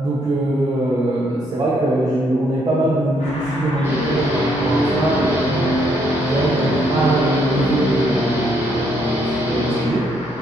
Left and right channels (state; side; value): normal; both; correlation 0.72